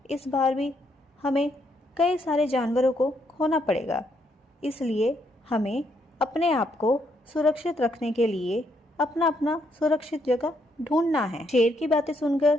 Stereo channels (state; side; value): normal; both; correlation 0.74